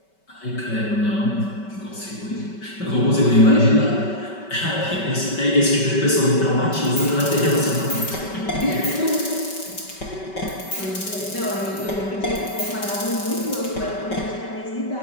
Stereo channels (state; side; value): late; right; 5.2 ms